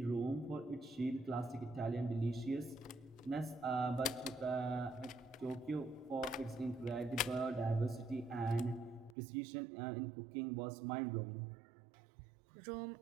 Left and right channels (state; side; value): drops out; left; at 9.2 s